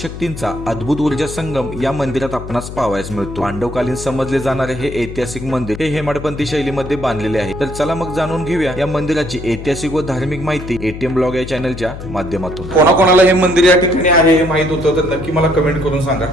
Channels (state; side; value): noise; left; hum, 10 dB below the sound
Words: शक्तींचा अद्भुत ऊर्जा संगम या मंदिरात आपणास पाहावयास मिळतो. पांडवकालीन समजले जाणारे हे ऐतिहासिक मंदिर हे हेमाडपंथी शैलीमध्ये बांधलेले आहे. तर चला मग जाणून घेऊया या मंदिराची ऐतिहासिक व धार्मिक माहिती एटीएम ब्लॉग या चॅनलच्या माध्यमातून. कोणाकोणाला हे मंदिर या ठिकाणी आहे हे माहित होतं तर नक्की मला कमेंट करून सांगा.